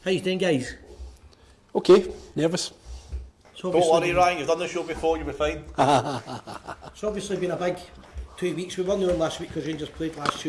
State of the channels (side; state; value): both; identical; correlation 1.00